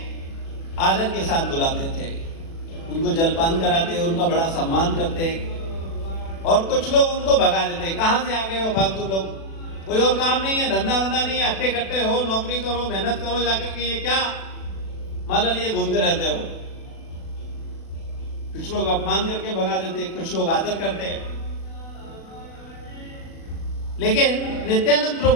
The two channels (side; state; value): right; late; 36 ms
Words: आदर के साथ बुलाते थे, उनको जलपान कराते, उनका बड़ा सम्मान करते, और कुछ लोग उनको भगा देते। कहां से आ गए हो फालतू लोग, कोई और काम नहीं है, धंधा वंधा नहीं है, अट्टे कट्टे हो, नौकरी करो, मेहनत करो, जाकर के ये क्या माला लिए घूमते रहते हो। कुछ लोग अपमान करके भगा देते, कुछ लोग आदर करते। लेकिन नित्यानंद